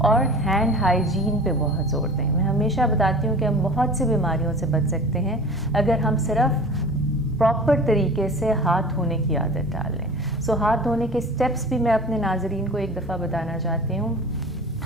ہینڈ ہائیجین پہ بہت زور دیں. میں ہمیشہ بتاتی ہوں کہ ہم بہت سی بیماریوں سے بچ سکتے ہیں اگر ہم صرف پراپر طریقے سے ہاتھ دھونے کی عادت ڈال لیں. سو ہاتھ دھونے کے اسٹیپس بھی میں اپنے ناظرین کو ایک دفعہ بتانا چاہتی ہوں.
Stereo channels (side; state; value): both; normal; correlation 0.39